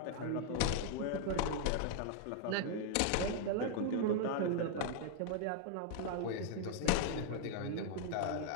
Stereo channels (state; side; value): different; both; correlation 0.00